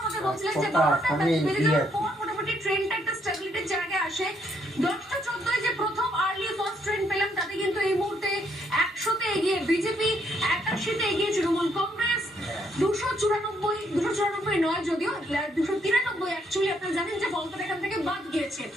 আমাদের বলছিলেন যে 12টা বেজে যাওয়ার পর মোটামুটি ট্রেন্ডটা একটা স্টেবিলিটির জায়গায় আসে। 10টা 14 যে প্রথম আর্লি ফার্স্ট ট্রেন্ড পেলাম, তাতে কিন্তু এই মুহূর্তে 100তে এগিয়ে বিজেপি, 81তে এগিয়ে তৃণমূল কংগ্রেস, 294 নয় যদিও 293 অ্যাকচুয়ালি আপনারা জানেন যে ফলটা এখান থেকে বাদ গিয়েছে।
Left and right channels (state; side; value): normal; both; correlation 0.72